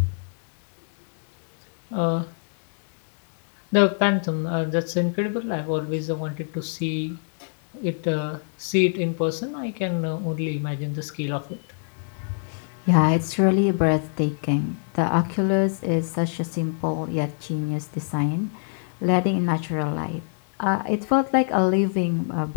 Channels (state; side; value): silent; right; digital silence